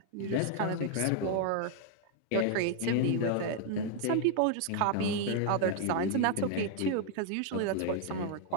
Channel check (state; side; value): different; both; correlation 0.00